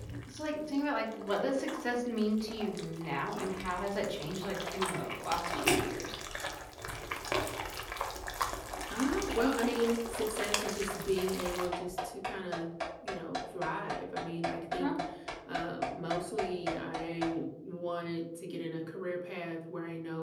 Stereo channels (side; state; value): both; identical; correlation 1.00